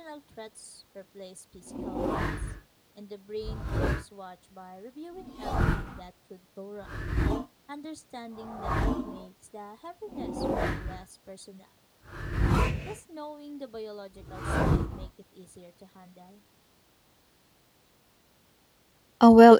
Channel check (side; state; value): both; identical; correlation 1.00